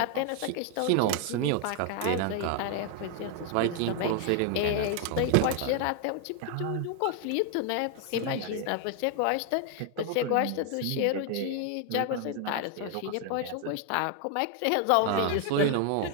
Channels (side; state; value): both; different; correlation 0.01